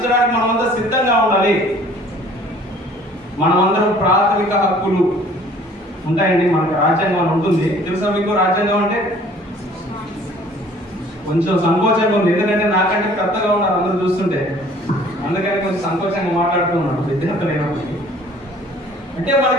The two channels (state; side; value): normal; both; correlation 0.53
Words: మనమంతా సిద్ధంగా ఉండాలి. మనమందరం ప్రాథమిక హక్కులు ఉంటాయండి. మనకు రాజ్యాంగం ఉంటుంది. తెలుసా మీకు రాజ్యాంగం అంటే? కొంచెం సంకోచంగా ఉంది, ఎందుకంటే నాకంటే పెద్దగా ఉన్నారు అందరూ చూస్తుంటే, అందుకని కొంచెం సంకోచంగా మాట్లాడుతున్నాడు విద్యార్థులు అయినప్పటికీ. అంటే